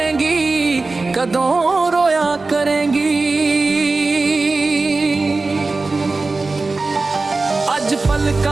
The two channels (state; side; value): quieter; left; 3.6 dB